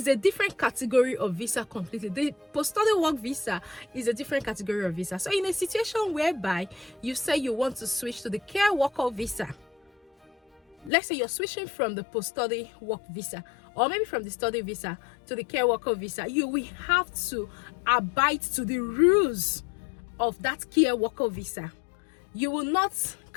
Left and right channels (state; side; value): drops out; right; at 10.9 s